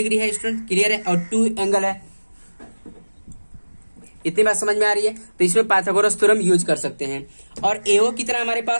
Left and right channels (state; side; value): inverted; both; correlation -1.00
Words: है स्टूडेंट, क्लियर है, और 2 एंगल है। इतनी बात समझ में आ रही है। तो इसमें पाइथागोरस थ्योरम यूज कर सकते हैं। और AO कितना हमारे